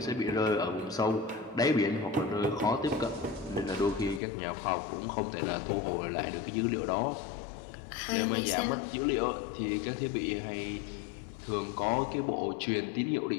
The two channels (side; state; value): right; drops out; at 4.2 s